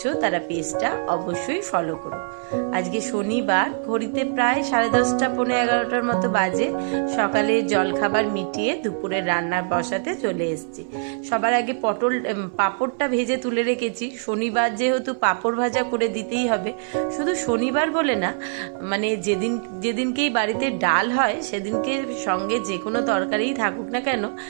তারা পেজটা অবশ্যই ফলো করো। আজকে শনিবার, ঘড়িতে প্রায় 10:30 পৌনে 11টার মতো বাজে। সকালে জলখাবার মিটিয়ে দুপুরে রান্নার বসাতে চলে এসেছি। সবার আগে পাঁপড়টা ভেজে তুলে রেখেছি। শনিবার যেহেতু পাঁপড় ভাজা করে দিতেই হবে। শুধু শনিবার বলে না, মানে যেদিনকেই বাড়িতে ডাল হয় সেদিনকে সঙ্গে যে কোনো তরকারিই থাকুক না কেন,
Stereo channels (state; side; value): silent; left; 59 dB below the other